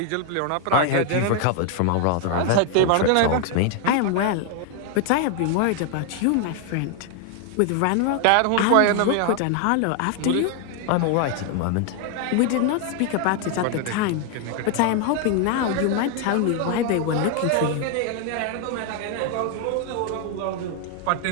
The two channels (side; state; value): both; different; correlation 0.00